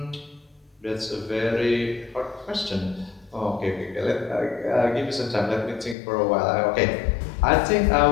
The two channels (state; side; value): drops out; right; at 6.0 s